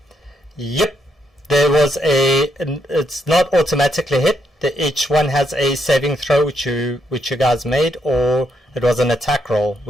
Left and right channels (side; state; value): both; normal; correlation 0.78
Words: Yep. There was it's not automatically hit. Each one has a saving throw which you guys made, or it was an attack roll